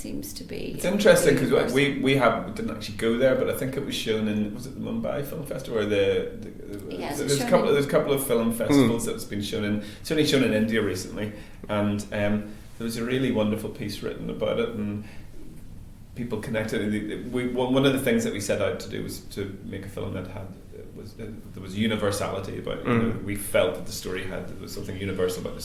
be. It's interesting because we didn't actually go there, but I think it was shown in, was it the Mumbai Film Festival or there's a couple of film festivals that's been shown in, certainly shown in India recently, and there was a really wonderful piece written about it, and people connected. One of the things that we set out to do was to make a film that there was universality about it. You know, we felt that the story there was something universal about the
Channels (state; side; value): identical; both; correlation 1.00